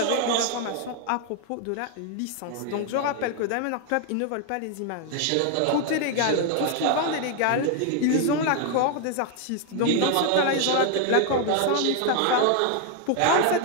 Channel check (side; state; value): both; different; correlation 0.00